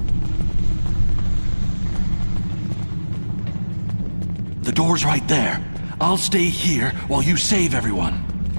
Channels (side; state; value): both; inverted; correlation -1.00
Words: The door's right there. I'll stay here while you save everyone.